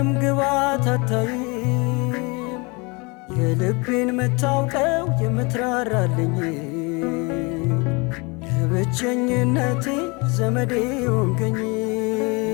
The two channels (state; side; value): quieter; right; 28.5 dB